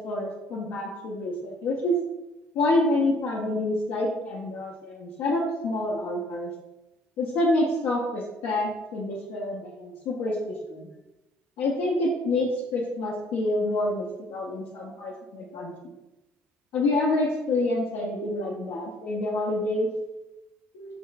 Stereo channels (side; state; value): both; normal; correlation 0.60